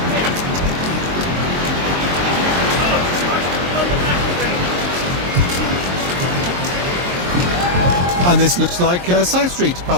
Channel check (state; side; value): late; left; 22 ms